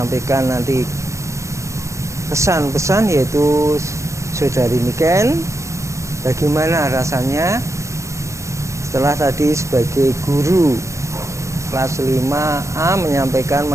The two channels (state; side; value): late; left; 0.14 ms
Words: nanti kesan-pesan yaitu Saudari Niken, bagaimana rasanya setelah tadi sebagai guru kelas 5A menyampaikan